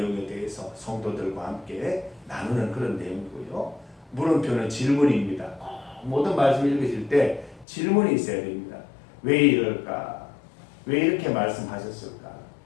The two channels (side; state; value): right; drops out; at 7.7 s